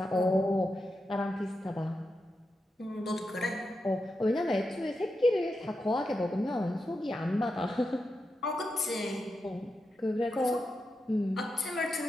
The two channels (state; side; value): normal; both; correlation 0.88